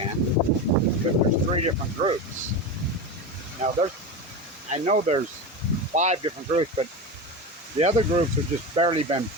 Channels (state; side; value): normal; both; correlation 0.22